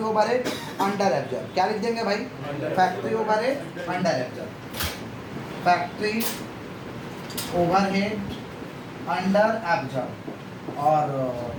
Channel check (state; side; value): identical; both; correlation 1.00